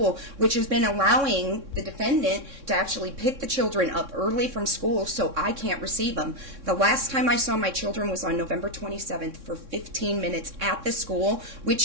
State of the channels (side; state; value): left; late; 3.6 ms